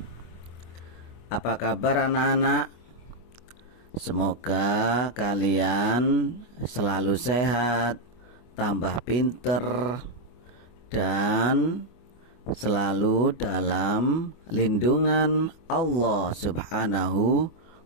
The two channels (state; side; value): late; right; 25 ms